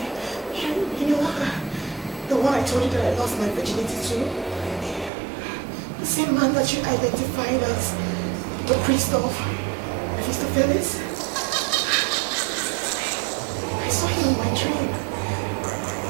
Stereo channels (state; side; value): drops out; left; at 5.1 s